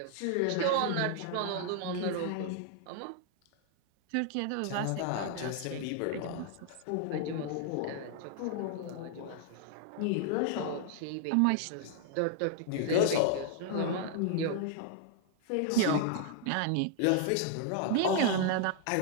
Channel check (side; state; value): both; different; correlation 0.00